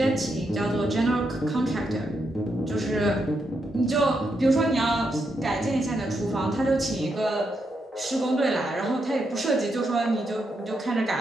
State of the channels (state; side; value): normal; both; correlation 0.82